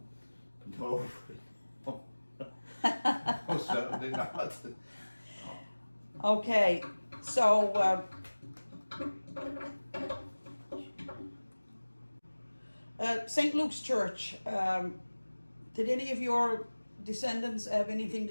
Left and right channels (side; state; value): both; inverted; correlation -1.00